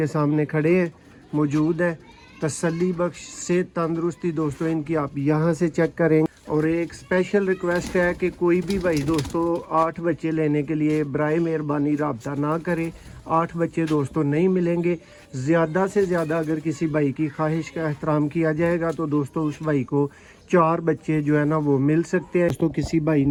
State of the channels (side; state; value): both; identical; correlation 1.00